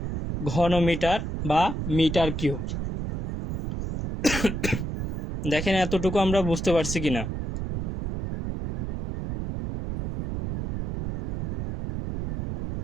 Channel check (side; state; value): right; noise; rumble, 4 dB below the sound